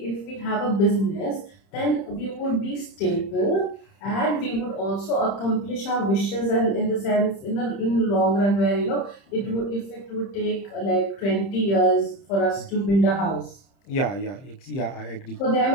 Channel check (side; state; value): right; late; 30 ms